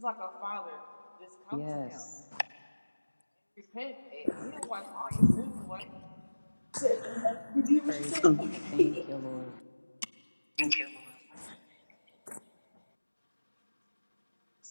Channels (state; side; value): inverted; both; correlation -1.00